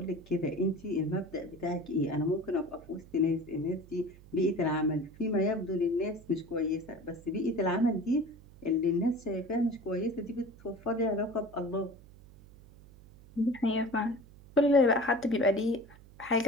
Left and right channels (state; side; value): noise; right; hum, 22 dB below the sound